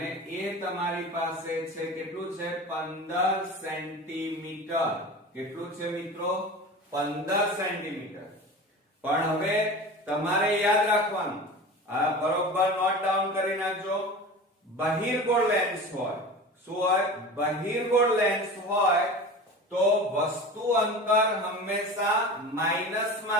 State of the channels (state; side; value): normal; both; correlation 0.33